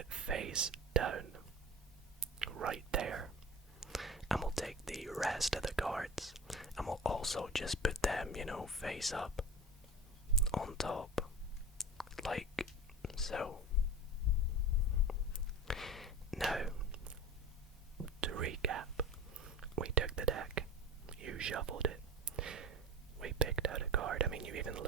face down, right there. And we'll take the rest of the cards, and we'll also just put them, face up, on top, like so. Now, to recap, we took the deck, you shuffled it, we picked out a card, you even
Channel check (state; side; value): normal; both; correlation 0.33